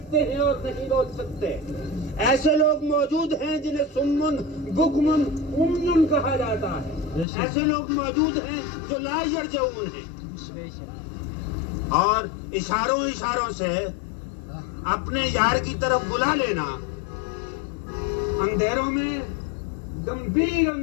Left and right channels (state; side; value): drops out; right; at 7.2 s